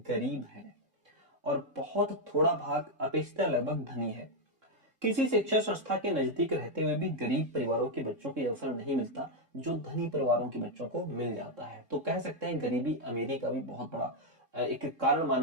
है और बहुत थोड़ा भाग अपेक्षित लगभग धनी है। किसी शिक्षा संस्था के नजदीक रहते हुए भी गरीब परिवारों के बच्चों को अवसर नहीं मिलता जो धनी परिवारों के बच्चों को मिल जाता है। तो कह सकते हैं गरीबी अमीरी का भी बहुत बड़ा एक कारण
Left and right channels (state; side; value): late; left; 3.7 ms